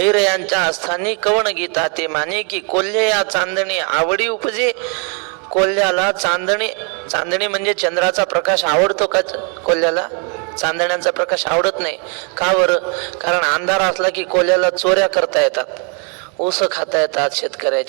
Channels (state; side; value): quieter; left; 37.5 dB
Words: स्थानी कवण गीता ते माने, की कोल्हे या चांदणी आवडी उपजे. कोल्ह्याला चांदणी म्हणजे चंद्राचा प्रकाश आवडतो का? कोल्ह्याला चांदण्यांचा प्रकाश आवडत नाही. का बरं? कारण अंधार असला की कोल्ह्याला चोऱ्या करता येतात, ऊस खाता येतात,